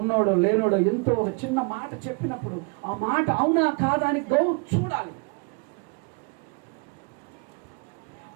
లేనోడో, ఎంతో ఒక చిన్న మాట చెప్పినప్పుడు ఆ మాట అవునా కాదా అని చూడాలి.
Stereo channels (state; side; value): quieter; left; 33.1 dB